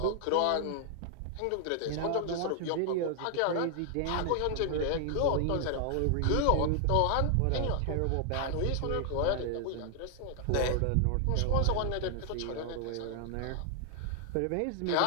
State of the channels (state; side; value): different; both; correlation 0.00